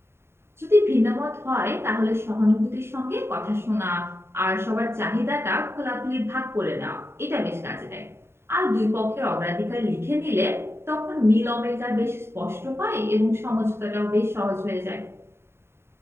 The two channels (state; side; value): late; left; 0.12 ms